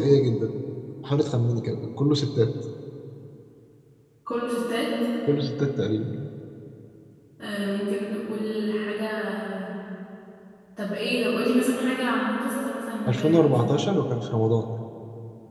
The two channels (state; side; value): identical; both; correlation 1.00